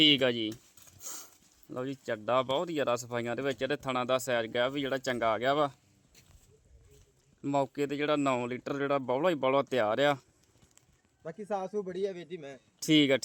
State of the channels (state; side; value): identical; both; correlation 1.00